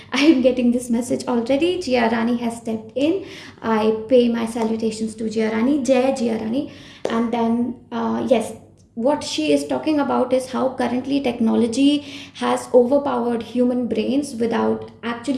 I am getting this message already. Jia Rani has stepped in. I pay my salutations to Jia Rani. Jai Jia Rani. And then, yes, what she is talking about is how currently technology has overpowered human brains without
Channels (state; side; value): identical; both; correlation 1.00